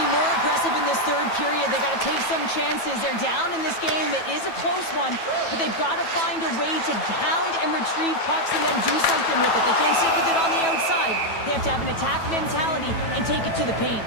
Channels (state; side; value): late; right; 9.1 ms